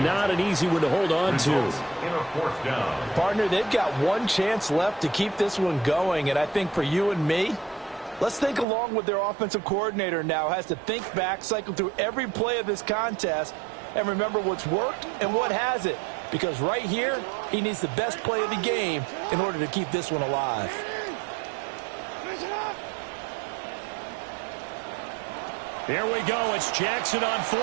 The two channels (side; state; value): left; drops out; at 8.7 s